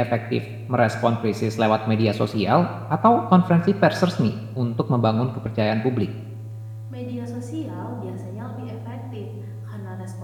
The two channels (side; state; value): both; identical; correlation 1.00